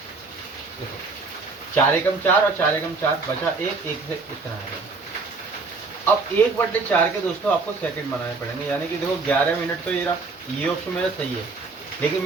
देखो, 4 एकम 4 और 4 एकम 4 बचा 1 से इतना आएगा। अब 1/4 के दोस्तों आपको सेकंड बनाने पड़ेंगे, यानी कि देखो 11 मिनट तो ये ऑप्शन मेरा सही है, लेकिन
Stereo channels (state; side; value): quieter; left; 4.0 dB